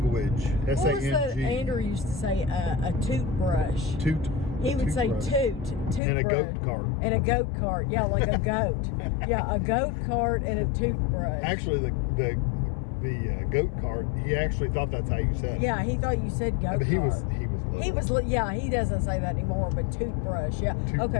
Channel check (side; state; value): right; drops out; at 6.0 s